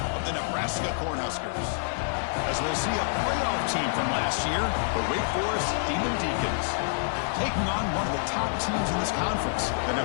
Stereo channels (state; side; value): silent; right; digital silence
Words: of the Nebraska Cornhuskers. As we'll see a playoff team from last year, the Wake Forest Demon Deacons, taking on one of the top teams in this conference, the